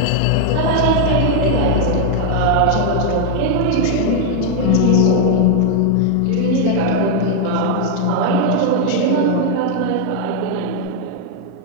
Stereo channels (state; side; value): different; both; correlation 0.00